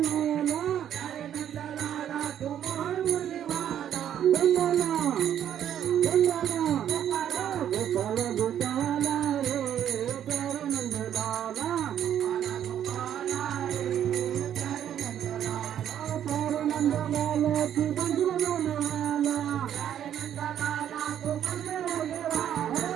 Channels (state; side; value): quieter; left; 10.1 dB